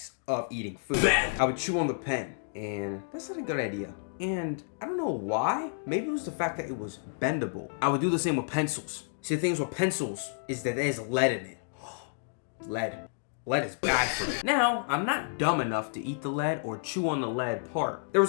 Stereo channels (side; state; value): right; silent; digital silence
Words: of eating food. I would chew on the pen, and that's not a good idea. And I don't know why. Maybe it was the fact that it was bendable. I would do the same with pencils. See, the things with pencils is that there's lead in it. Lead. Lead is bad for me. Now, I'm not dumb enough to eat the lead or chew on the lead part. There